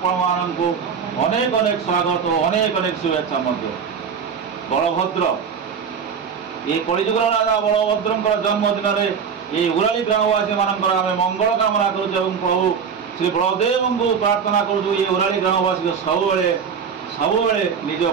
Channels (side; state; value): left; quieter; 6.6 dB